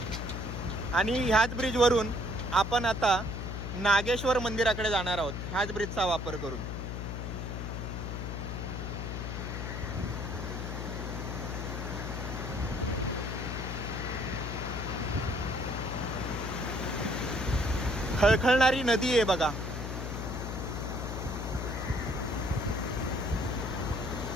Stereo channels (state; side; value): noise; left; hum, 4 dB below the sound